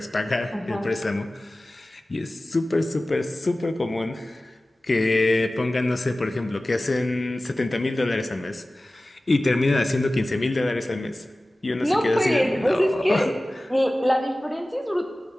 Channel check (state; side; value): normal; both; correlation 0.97